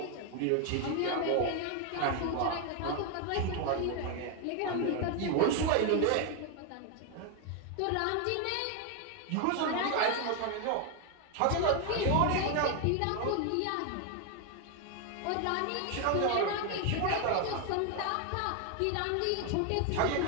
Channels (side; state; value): both; different; correlation 0.01